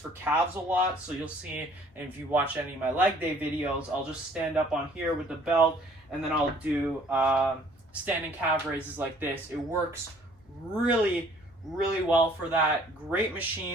calves a lot. So you'll see, and if you watch any of my leg day videos, I'll just stand up on here with the belt, and then I'll do standing calf raises like this. It works really well for that. Great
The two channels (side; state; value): both; normal; correlation 0.57